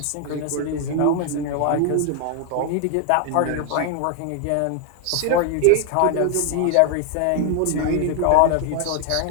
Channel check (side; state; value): both; different; correlation 0.00